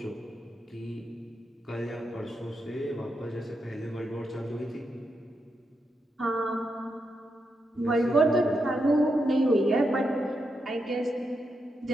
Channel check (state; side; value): normal; both; correlation 0.84